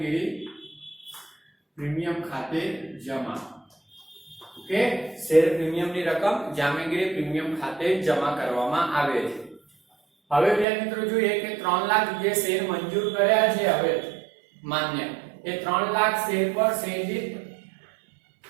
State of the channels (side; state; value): left; drops out; at 10.7 s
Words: પ્રીમિયમ ખાતે જમા. ઓકે, શેર પ્રીમિયમ ની રકમ જામીનગીરી પ્રીમિયમ ખાતે જમા કરવામાં આવે છે. હવે વિદ્યાર્થી મિત્રો જોઈએ કે 3 લાખ જે શેર મંજૂર કર્યા છે, હવે માન્ય, એ 3 લાખ શેર પર શેર દીઠ